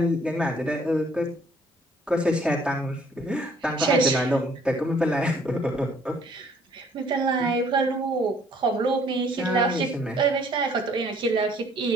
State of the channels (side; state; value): both; normal; correlation 0.61